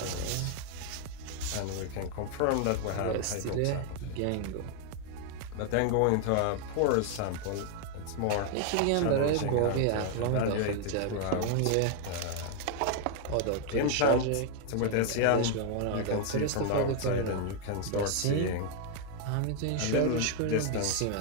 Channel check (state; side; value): different; both; correlation 0.00